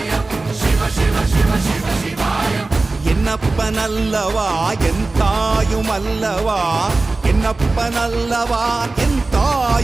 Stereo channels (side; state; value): left; quieter; 3.4 dB